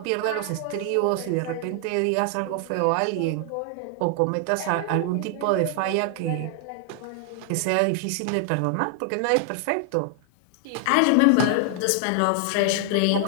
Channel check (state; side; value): different; both; correlation 0.00